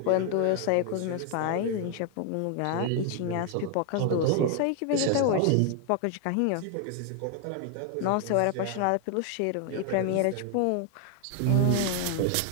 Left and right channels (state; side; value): different; both; correlation 0.00